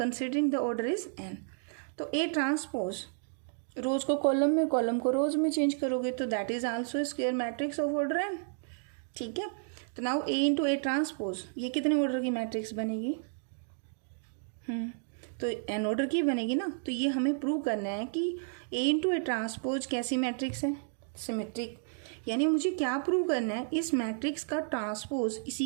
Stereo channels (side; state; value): left; silent; digital silence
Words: the order is N. तो A transpose रोज को column में, column को रोज में चेंज करोगे तो that is also square matrix of order N. ठीक है. तो now A into A transpose, ये कितने ऑर्डर की मैट्रिक्स बनेगी? तो एन ऑर्डर की बनेगी ना. तो ये हमें प्रूव करना है कि ए इंटू ए ट्रांसपोज कैसी मैट्रिक्स है? सिमेट्रिक. यानी मुझे क्या प्रूव करना है, इस मैट्रिक्स का ट्रांसपोज